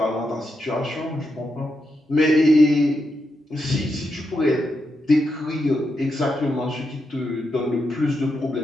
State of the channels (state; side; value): normal; both; correlation 0.84